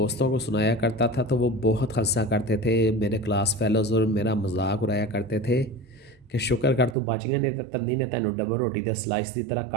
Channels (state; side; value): drops out; left; at 7.0 s